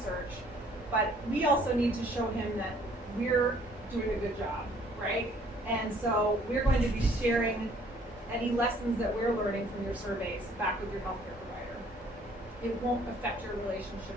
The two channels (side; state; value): both; normal; correlation 0.59